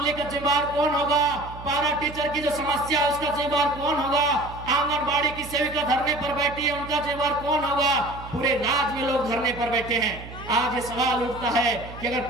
का जिम्मेदार कौन होगा? पारा टीचर की जो समस्या है उसका जिम्मेदार कौन होगा? आंगनबाड़ी की सेविका धरने पर बैठी है, उनका जिम्मेदार कौन होगा? पूरे राज्य में लोग धरने पर बैठे हैं। आज ये सवाल उठता है कि अगर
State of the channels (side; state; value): right; noise; hum, 14 dB below the sound